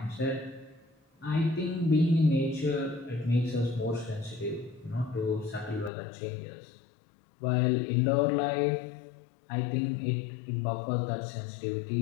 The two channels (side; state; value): right; drops out; at 5.9 s